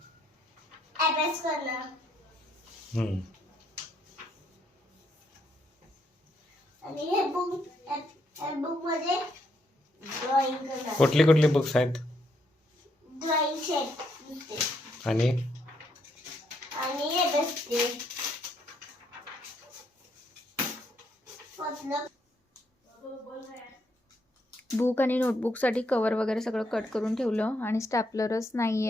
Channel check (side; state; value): both; normal; correlation 0.75